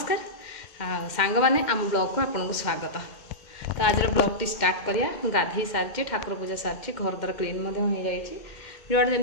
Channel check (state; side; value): late; right; 2.1 ms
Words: सांग माने आम ब्लॉग को आपन को स्वागत। तो आज ब्लॉग टी स्टार्ट करिया गाधी सारी ठाकुर पूजा सारी घर द्वार क्लीन हो जाइए जोड़